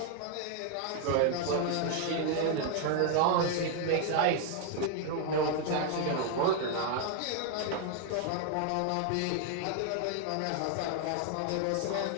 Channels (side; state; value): both; different; correlation 0.00